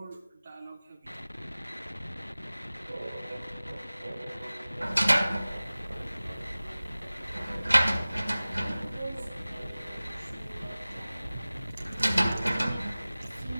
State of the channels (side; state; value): both; inverted; correlation -0.98